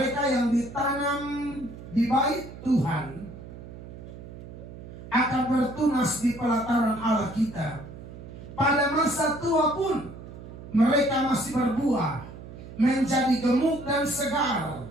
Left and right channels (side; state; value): right; noise; hum, 14 dB below the sound